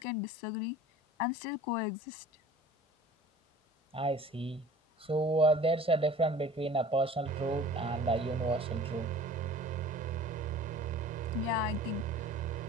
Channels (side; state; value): both; normal; correlation 0.45